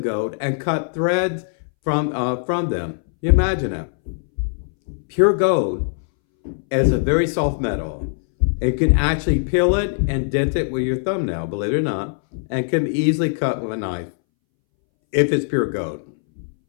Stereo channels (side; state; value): right; silent; 64 dB below the other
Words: gold, and cut threads from them. You imagine it. Pure gold is a very soft metal. It can actually peel it and dent it with your thumbnail, believe it or not, and can be easily cut with a knife if it's pure gold.